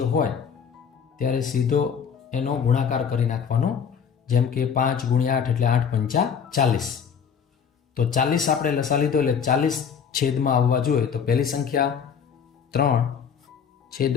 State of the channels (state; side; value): quieter; right; 7.1 dB